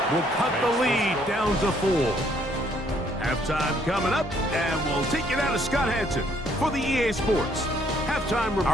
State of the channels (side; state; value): both; normal; correlation 0.66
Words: will cut the lead down to 4. Halftime coming up, and we'll take you down to Scott Hanson for the EA Sports Halftime Report.